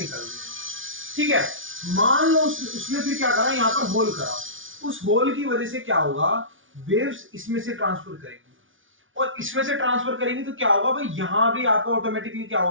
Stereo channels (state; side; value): late; left; 0.57 ms